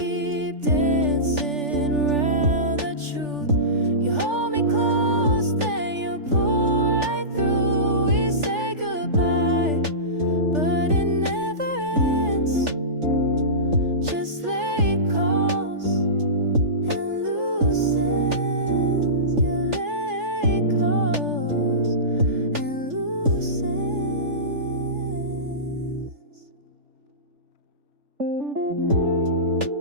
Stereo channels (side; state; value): left; late; 3.4 ms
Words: dancing around the truth? You hold me close, then you pull right through. We say goodbye, but it never ends. Just late calls and loose ends. Yeah, late calls and loose ends.